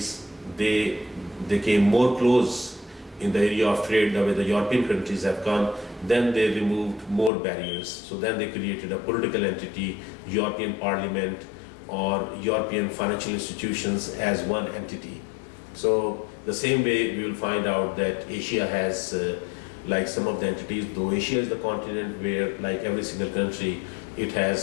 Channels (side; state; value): right; drops out; at 7.3 s